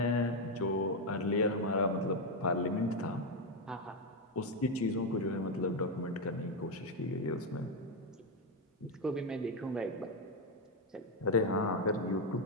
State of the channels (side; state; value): both; normal; correlation 0.05